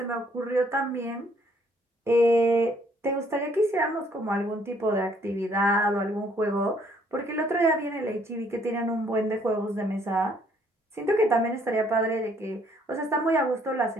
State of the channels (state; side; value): normal; both; correlation 0.65